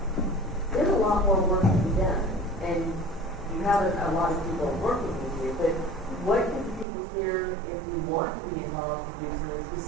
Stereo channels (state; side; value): drops out; left; at 6.9 s